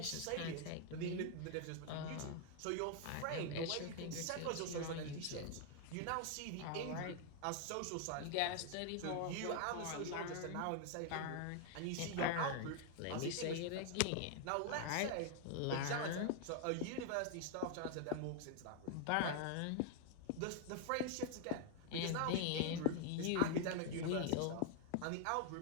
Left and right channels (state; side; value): different; both; correlation 0.00